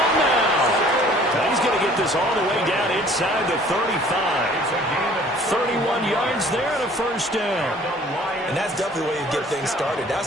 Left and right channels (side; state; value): both; normal; correlation 0.54